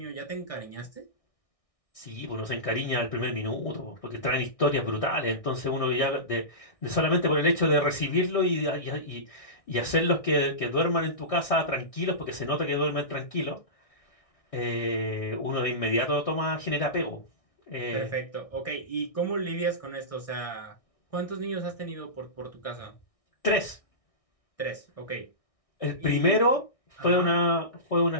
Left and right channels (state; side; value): late; right; 1.6 ms